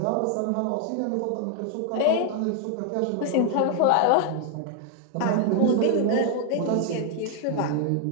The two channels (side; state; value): both; different; correlation 0.00